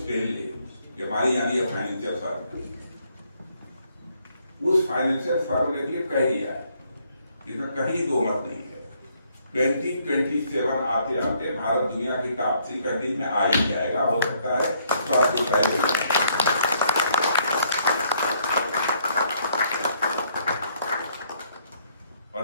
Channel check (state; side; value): inverted; both; correlation -0.68